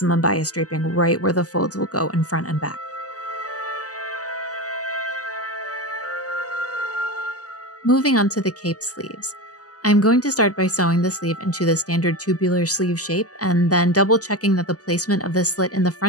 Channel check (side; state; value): right; late; 0.67 ms